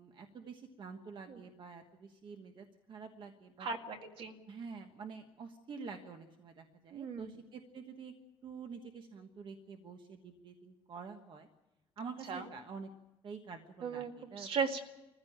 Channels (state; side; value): quieter; left; 4.9 dB